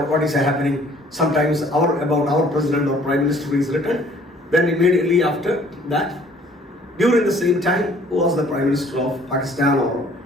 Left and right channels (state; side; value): normal; both; correlation 0.57